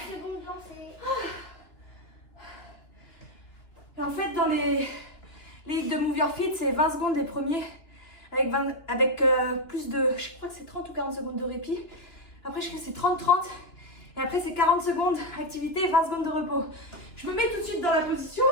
secondes lancées. Et en fait, dans les hits de Move Your Feet, c'est 20 secondes les premiers, avec plus de, je crois que c'est 30 ou 40 secondes de répit. Après, je crois que c'est 30-30. Et après, c'est 40 secondes activité et 20 secondes de repos. Je me mets tout de suite dans la position.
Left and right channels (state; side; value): late; right; 2.9 ms